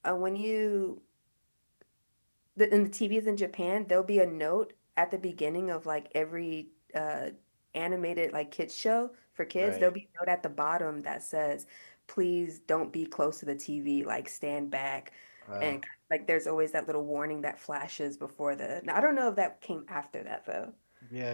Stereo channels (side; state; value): both; inverted; correlation -1.00